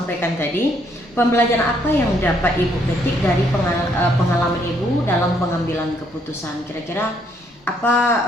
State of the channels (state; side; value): normal; both; correlation 0.70